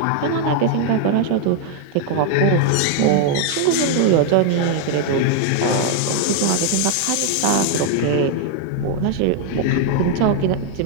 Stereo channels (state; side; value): different; both; correlation 0.00